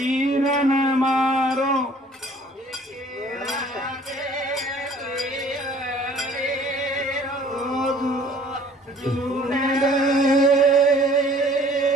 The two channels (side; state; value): both; normal; correlation 0.54